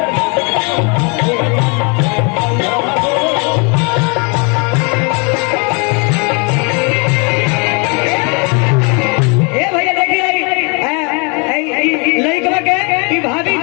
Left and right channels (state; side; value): quieter; right; 33.0 dB